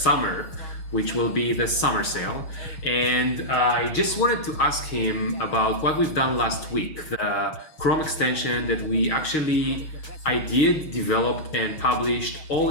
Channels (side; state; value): right; late; 6.4 ms